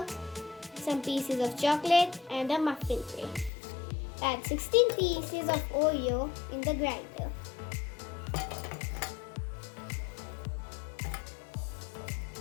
some pieces of chocolate and a muffin tray. Add 16 pieces of Oreo in the grinder.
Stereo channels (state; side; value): drops out; right; at 3.5 s